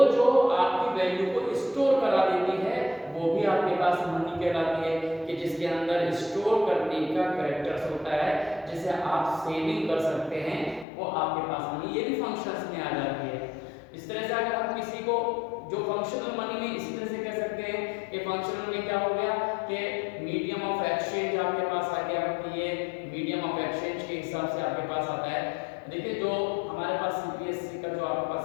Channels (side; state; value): right; drops out; at 10.9 s